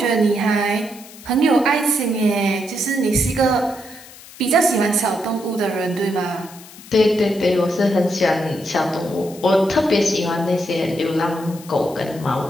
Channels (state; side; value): noise; left; hiss, 19 dB below the sound